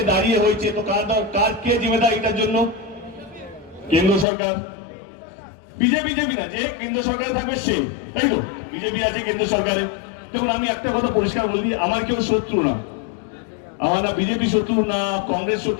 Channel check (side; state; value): right; drops out; at 4.2 s